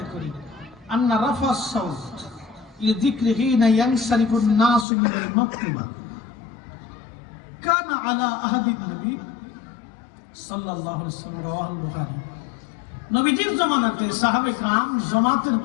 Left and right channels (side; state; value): right; drops out; at 4.9 s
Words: করি। আন্না রাফা সাউত লিযিকরিহি ইয়ানসারিফুন নাসু মিনাল মাকতুবা কানা আলা আহাদিন নবী সাল্লাল্লাহু আলাইহি ওয়াসাল্লাম রাওয়াহুল বুখারী। নবীজির জামানাতে সাহাবে کرام জামাতের